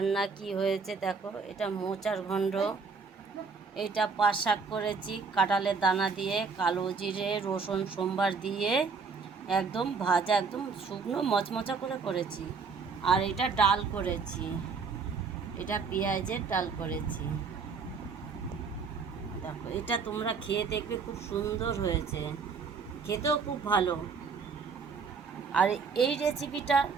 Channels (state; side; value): quieter; left; 5.1 dB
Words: কি হয়েছে দেখো। এটা মোচার ঘণ্ট, এটা পাট শাক করেছি কাঁঠালের দানা দিয়ে, কালো জিরে রসুন সোমবার দিয়ে একদম ভাজা, একদম শুকনো মচমচা করে করেছি। আর এটা ডাল করেছি, এটা পেঁয়াজের ডাল করেছি। দেখো এটা তোমরা খেয়ে দেখবে, খুব সুন্দর হয়েছে, খেতেও খুব ভালো। আর এই রেসিপিটা